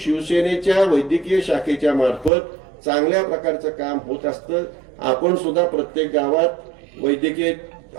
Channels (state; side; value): drops out; left; at 2.3 s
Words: वैद्यकीय शाखेच्या मार्फत चांगल्या प्रकारचं काम होत असतं. आपण सुद्धा प्रत्येक गावात वैद्यकीय